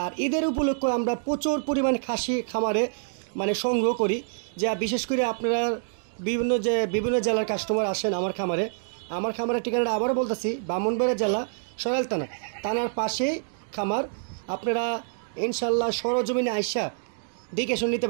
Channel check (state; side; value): silent; left; digital silence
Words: আর ঈদের উপলক্ষে আমরা প্রচুর পরিমাণ খাসি খামারে সংগ্রহ করি, যা বিশেষ করে আপনারা বিভিন্ন জেলার কাস্টমার আসেন আমার খামারের ঠিকানাটা আবারও বলতেছি, ব্রাহ্মণবাড়িয়া জেলা সরাইল থানার পাশেই খামার। আপনারা ইনশাল্লাহ সরজমিনে আইসা দেখে শুনে নিতে